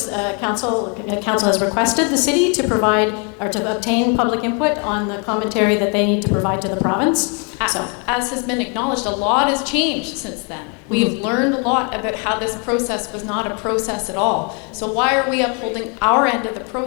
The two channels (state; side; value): quieter; right; 36.2 dB